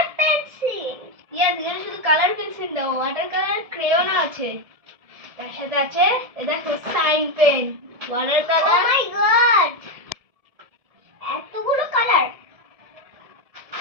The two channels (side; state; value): left; late; 1.7 ms